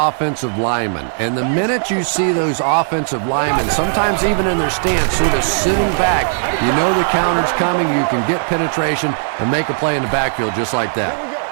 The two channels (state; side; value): silent; left; 68 dB below the other